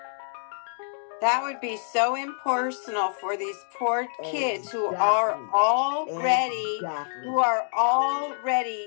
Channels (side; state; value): right; silent; digital silence